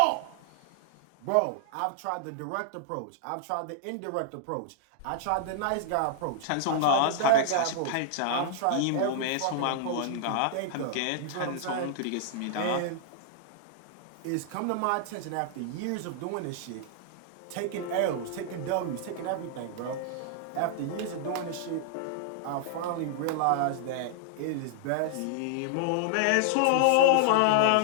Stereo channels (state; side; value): different; both; correlation -0.01